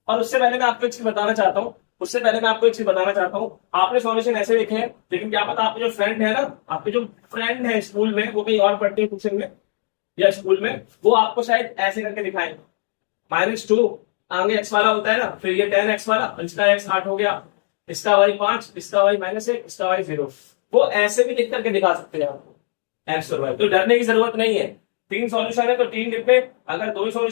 और उससे पहले मैं आपको एक चीज बताना चाहता हूं, आपने सॉल्यूशन ऐसे लिखे हैं, लेकिन क्या पता आपके जो फ्रेंड है ना, आपके जो फ्रेंड है स्कूल में, वो कहीं और पढ़ते हैं ट्यूशन में या स्कूल में, वो आपको शायद ऐसे करके दिखाएं, -2 आगे एक्स वाला होता है ना, फिर ये 10x वाला, इसका x 8 हो गया, इसका y 5, इसका y -1, इसका y 0। वो ऐसे भी लिख करके दिखा सकते हैं आपको एक्स और वाई। तो डरने की जरूरत नहीं है। 3 सॉल्यूशन है तो 3 डिब्बे, अगर 2 ही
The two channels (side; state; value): right; silent; digital silence